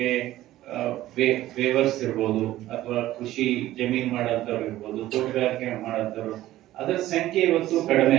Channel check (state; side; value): quieter; left; 14.9 dB